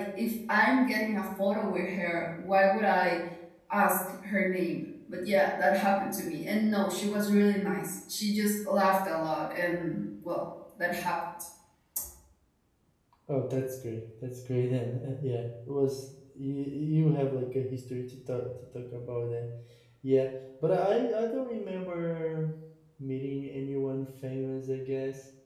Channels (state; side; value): identical; both; correlation 1.00